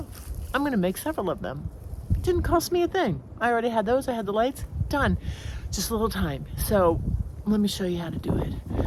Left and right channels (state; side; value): identical; both; correlation 1.00